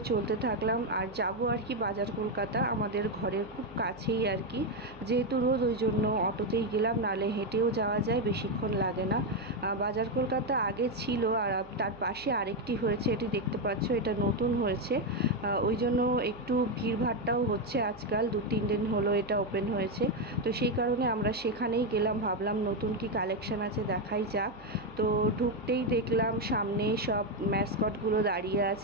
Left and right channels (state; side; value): noise; right; hum, 21 dB below the sound